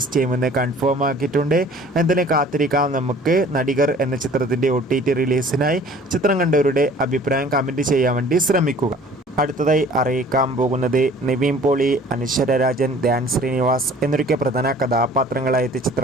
ചെയ്യുമെന്ന് കൺഫേം ആക്കിയിട്ടുണ്ട്. എന്തായാലും കാത്തിരിക്കാം നമുക്ക് നടികർ എന്ന ചിത്രത്തിൻ്റെ OTT റിലീസിനായി. ചിത്രം കണ്ടവരുടെ അഭിപ്രായം കമൻറ്റ് ചെയ്യാൻ വേണ്ടി ശ്രമിക്കുക. അടുത്തതായി അറിയിക്കാൻ പോകുന്നത് നിവിൻ പോളി, അനശ്വര രാജൻ, ധ്യാൻ ശ്രീനിവാസ് എന്നൊക്കെ പ്രധാന കഥാപാത്രങ്ങളായ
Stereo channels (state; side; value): normal; both; correlation 0.50